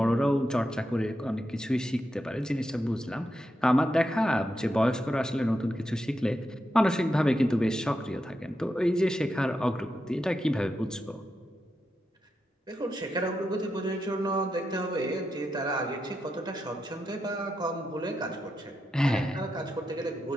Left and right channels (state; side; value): normal; both; correlation 0.86